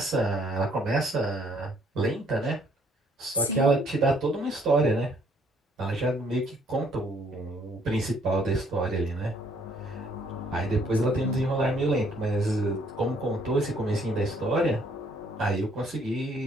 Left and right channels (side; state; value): both; normal; correlation 0.64